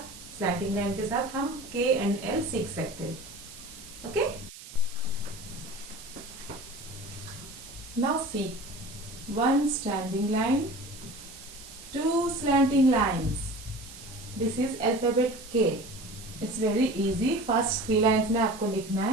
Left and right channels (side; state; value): right; noise; hiss, 16 dB below the sound